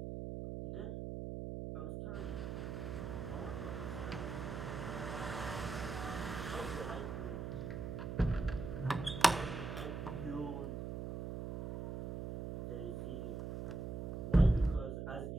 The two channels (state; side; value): noise; right; hum, 4 dB below the sound